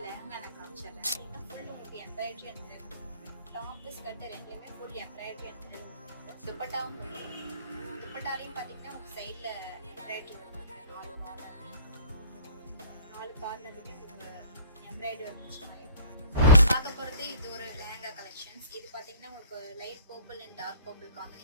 லெஹங்கா நான் காமிச்சிடுறேன். ஃபுல் உங்களுக்கு எம்ப்ராய்டரி அண்ட் டாப் ஸ்கர்ட் ரெண்டுலேயுமே ஃபுல் எம்ப்ராய்டரி அண்ட் துப்பட்டாவும் துப்பட்டாலையும் பார்த்தீங்கன்னா உங்கள் சைடில் எம்ப்ராய்டரி வந்துருக்கு. நாலு கார்னருமே எம்ப்ராய்டரி வந்துச்சு. பார்க்க போகிறது இது ஒரு லெஹங்கா கலெக்ஷன்ஸ். இது பார்த்தீங்கன்னா உங்களுக்கு light purple and dark purple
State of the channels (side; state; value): both; inverted; correlation -0.50